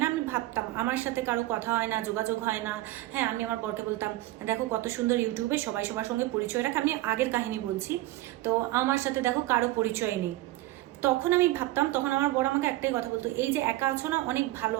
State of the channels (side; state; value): left; quieter; 17.1 dB